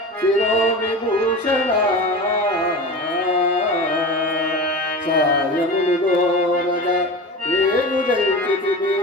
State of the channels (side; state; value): both; normal; correlation 0.30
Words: శిరో విభూషణ సాయమును దోరగ రేగుదంచితిమి.